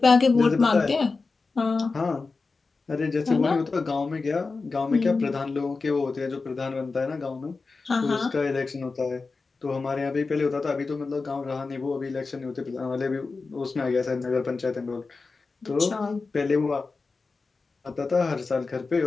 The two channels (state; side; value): quieter; right; 4.1 dB